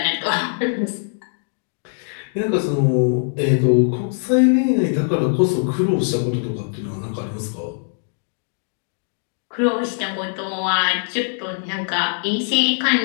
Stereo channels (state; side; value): silent; right; digital silence